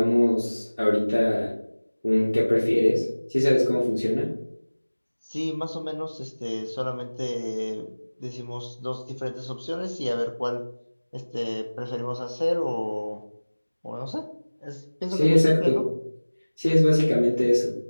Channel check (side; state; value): both; inverted; correlation -1.00